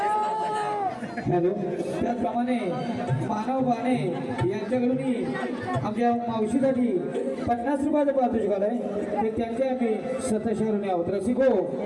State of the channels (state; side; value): identical; both; correlation 1.00